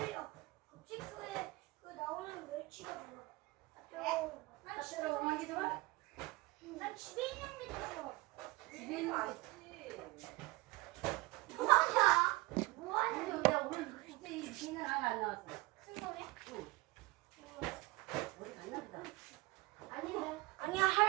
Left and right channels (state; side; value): quieter; left; 22.0 dB